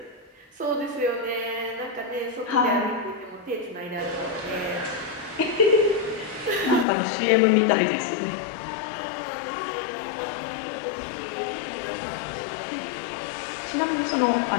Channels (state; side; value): drops out; right; at 6.9 s